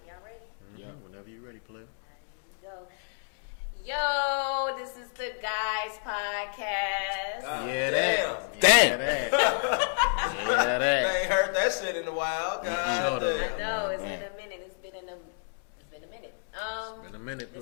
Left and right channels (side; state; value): right; silent; digital silence